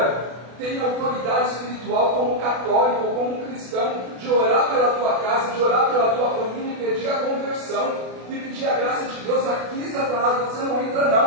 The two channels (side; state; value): left; late; 32 ms